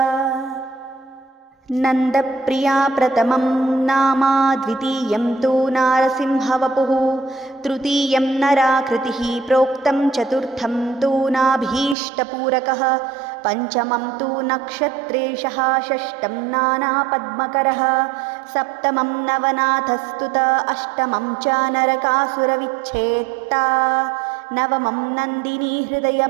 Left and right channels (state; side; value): drops out; left; at 12.0 s